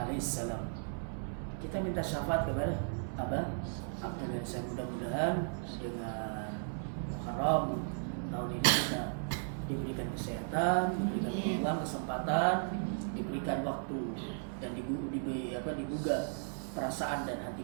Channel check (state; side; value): silent; left; 54 dB below the other